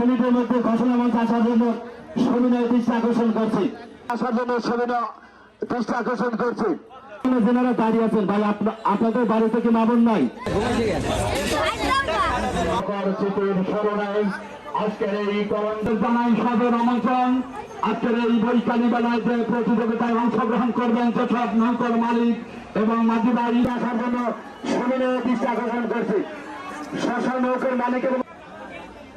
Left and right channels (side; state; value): both; identical; correlation 1.00